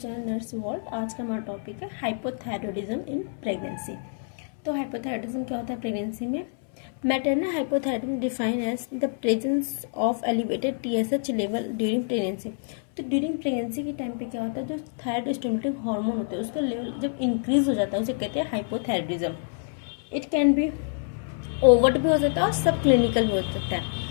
nurse world. आज का हमारा topic है हाइपोथायरॉयडिज्म इन प्रेगनेंसी। तो हाइपोथायरॉयडिज्म क्या होता है प्रेगनेंसी में? Maternal hypothyroidism defined as the presence of elevated TSH level during pregnancy. तो ड्यूरिंग प्रेगनेंसी के टाइम पे क्या होता है, जो थायराइड स्टिमुलेटिंग हार्मोन होता है उसका लेवल जब इंक्रीज हो जाता है उसे कहते हैं hypothyroidism. It can be overt भी हो सकता है और सब क्लिनिकल भी हो सकता है।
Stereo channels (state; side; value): silent; right; 60 dB below the other